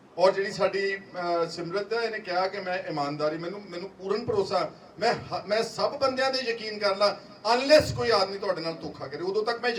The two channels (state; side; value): identical; both; correlation 1.00